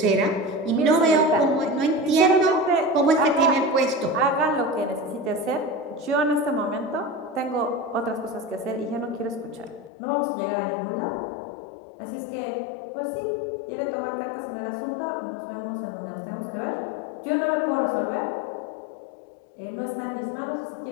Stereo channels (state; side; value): drops out; right; at 9.9 s